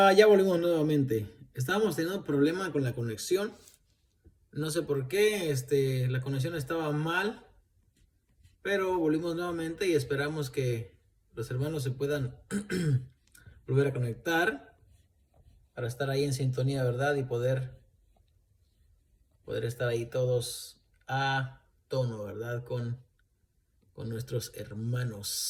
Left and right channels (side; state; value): both; identical; correlation 1.00